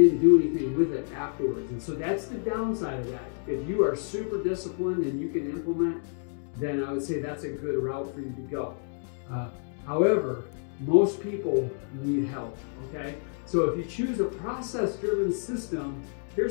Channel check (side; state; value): right; silent; 59 dB below the other